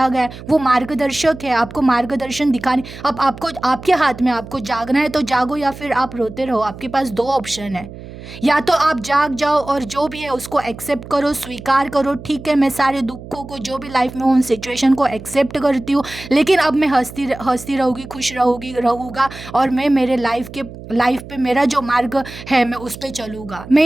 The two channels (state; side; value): noise; right; hum, 14 dB below the sound